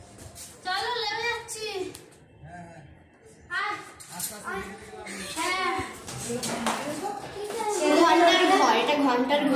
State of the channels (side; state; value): both; identical; correlation 1.00